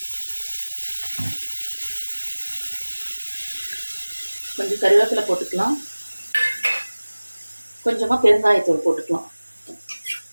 கொஞ்சம் கருவேப்பிலை போட்டுக்கலாம். கொஞ்சமாக பெருங்காயத்தூள் போட்டுக்கலாம்.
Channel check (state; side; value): inverted; both; correlation -1.00